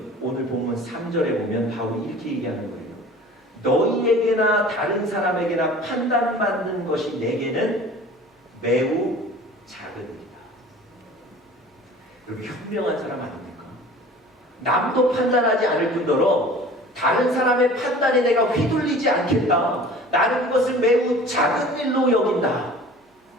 오늘 본문 3절에 보면 바울이 이렇게 얘기하는 거예요. 너희에게나 다른 사람에게나 판단받는 것이 내게는 매우 작은 일이다. 여러분, 현명한 사람 아닙니까? 남도 판단하지 않을 뿐더러 다른 사람의 판단에 내가 휘둘리지 않겠다. 나는 그것을 매우 작은 일로 여긴다.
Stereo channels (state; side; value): normal; both; correlation 0.44